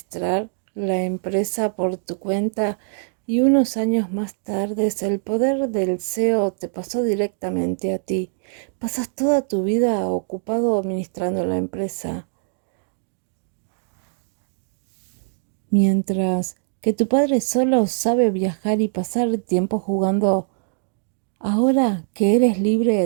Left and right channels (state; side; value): silent; left; digital silence